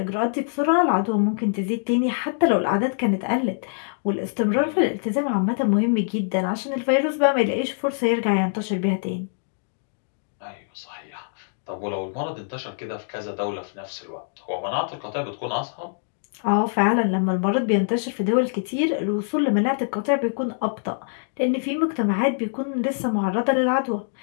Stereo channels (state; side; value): silent; right; digital silence